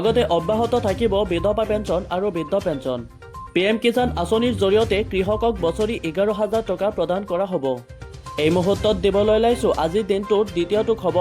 অব্যাহত থাকিব বিধৱা পেঞ্চন আৰু বৃদ্ধ পেঞ্চন। PM কিষাণ আঁচনিৰ জৰিয়তে কৃষকক বছৰি 11,000 টকা প্ৰদান কৰা হ'ব। এই মুহূৰ্তত দিবলৈ ওলাইছোঁ আজিৰ দিনটোৰ দ্বিতীয়টো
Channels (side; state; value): both; identical; correlation 1.00